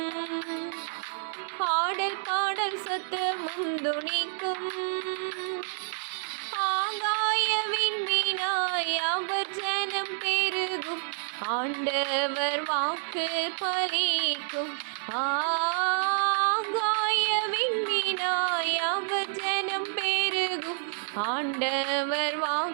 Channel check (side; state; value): left; silent; digital silence